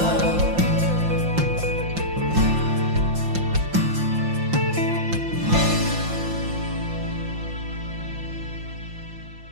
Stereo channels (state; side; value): late; left; 5.7 ms